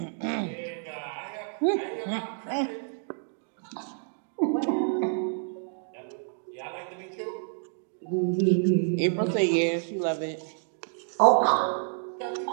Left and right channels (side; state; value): left; silent; 59 dB below the other